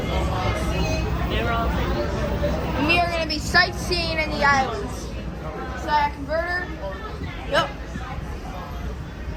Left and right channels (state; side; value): identical; both; correlation 1.00